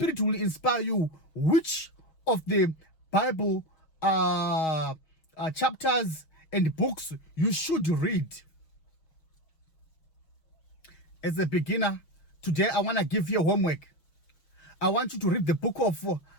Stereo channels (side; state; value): right; late; 6.3 ms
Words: will inspire you which of the Bible chapters and books you should read. As a beginner, today I want to give you a homework. I want you to read the book of